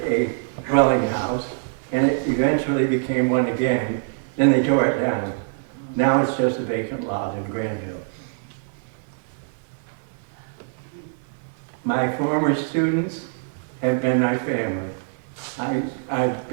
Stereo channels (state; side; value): silent; left; 61 dB below the other